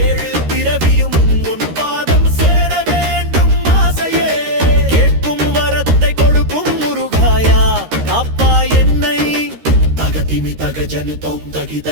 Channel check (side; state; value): left; late; 13 ms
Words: பிறவியும் உன் பாதம் சேர வேண்டும் ஆசையே கேட்கும் வரத்தை கொடுக்கும் முருகாயா காப்பா என்னை தகதிமி தக ஜனு தோம்